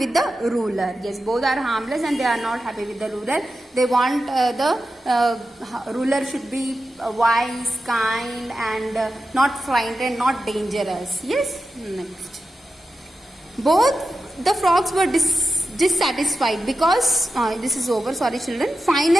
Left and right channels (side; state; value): both; normal; correlation 0.92